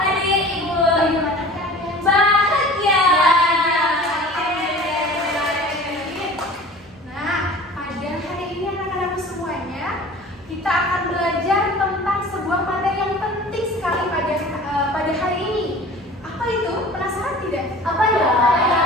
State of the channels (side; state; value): both; normal; correlation 0.42